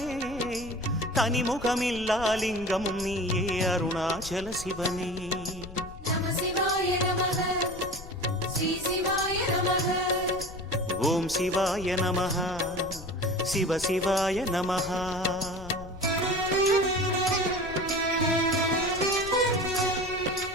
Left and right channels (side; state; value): left; noise; rumble, 14 dB below the sound